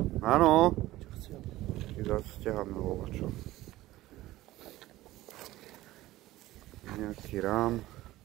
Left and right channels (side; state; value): left; quieter; 16.6 dB